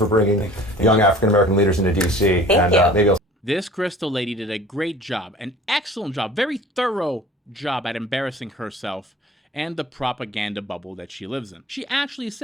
bringing young African-American leaders into D.C. Thank you. Maybe This Krystal lady did a great job, an excellent job, very thorough job at embarrassing herself and the propaganda bubble that she lives in. She actually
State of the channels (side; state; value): both; normal; correlation 0.47